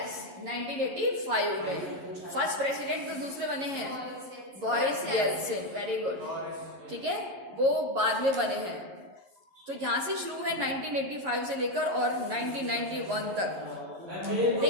1985 में। फर्स्ट प्रेसिडेंट तो दूसरे बने हैं, बोरिस येल्सिन। वेरी गुड, ठीक है, वो बाद में बने हैं। तो यहाँ से शुरू है 1985 से लेकर और 1991 तक।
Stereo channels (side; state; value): left; late; 11 ms